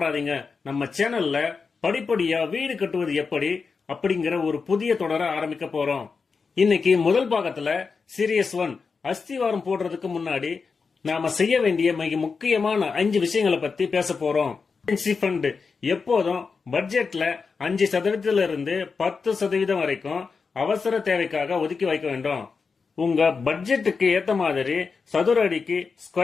நம்ம சேனல்ல படிப்படியா வீடு கட்டுவது எப்படி அப்படிங்கிற ஒரு புதிய தொடரை ஆரம்பிக்க போறோம். இன்னைக்கு முதல் பாகத்துல சீரியஸ் 1 அஸ்திவாரம் போடுறதுக்கு முன்னாடி நாம செய்ய வேண்டிய மிக முக்கியமான 5 விஷயங்களை பத்தி பேச போறோம். ஃபண்ட் எப்போதும் பட்ஜெட்ல 5% இருந்து 10% வரைக்கும் அவசர தேவைக்காக ஒதுக்கி வைக்க வேண்டும். உங்க பட்ஜெட்டுக்கு ஏத்த மாதிரி சதுர அடிக்கு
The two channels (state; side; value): quieter; right; 5.0 dB